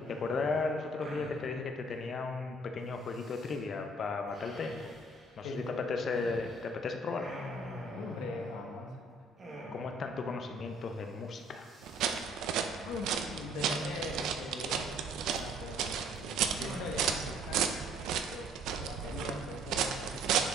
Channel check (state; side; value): normal; both; correlation 0.59